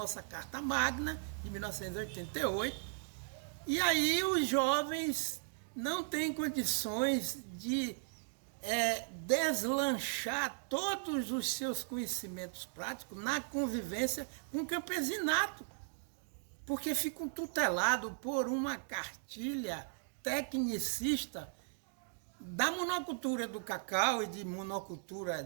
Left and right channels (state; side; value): silent; left; digital silence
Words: Carta Magna, de 1988, e aí os jovens não têm condições de deslanchar todos os seus conhecimentos práticos na convivência com o campesinato, porque ficam tutelados por uma cartilha tecnicista da monocultura do cacau e de monocultura